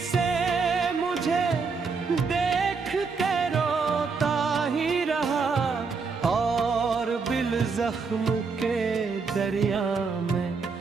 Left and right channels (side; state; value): left; quieter; 4.9 dB